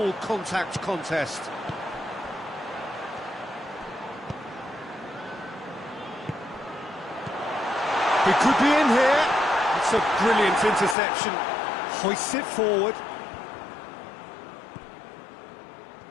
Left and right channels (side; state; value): right; drops out; at 11.0 s